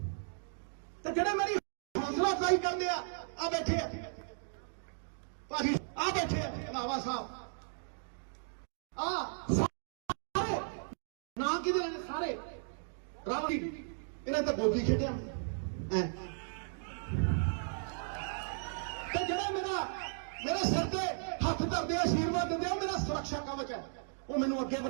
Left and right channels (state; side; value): silent; left; digital silence